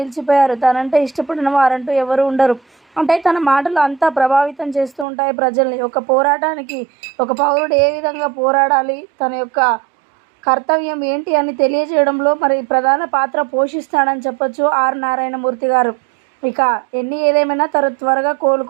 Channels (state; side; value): drops out; left; at 5.1 s